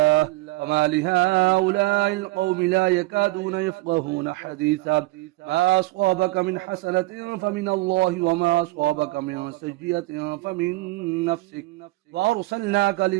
فما لهؤلاء القوم لا يكادون يفقهون حديثا ما أصابك من حسنة فمن الله وما أصابك من سيئة فمن نفسك وأرسلناك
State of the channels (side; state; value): left; quieter; 20.6 dB